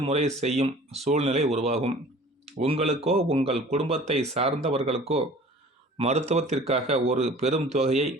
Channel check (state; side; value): normal; both; correlation 0.47